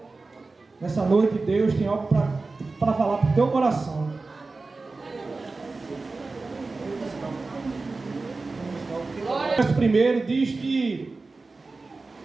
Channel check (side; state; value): left; quieter; 3.7 dB